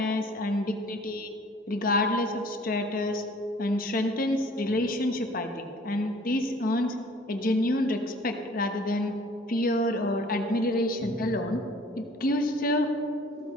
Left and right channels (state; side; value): normal; both; correlation 0.52